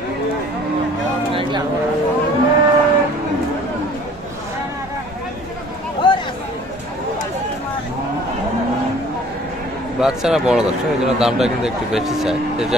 বাচ্চারা বড় দর্শক, এই জন্য দামটা কিন্তু একটু বেশি চাই।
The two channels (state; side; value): normal; both; correlation 0.51